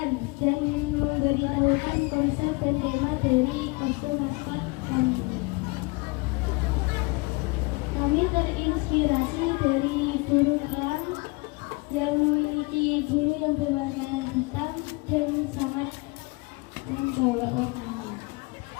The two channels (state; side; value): quieter; right; 26.9 dB